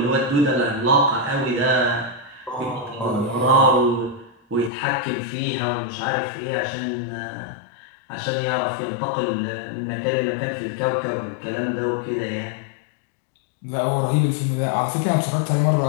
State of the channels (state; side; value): drops out; right; at 4.7 s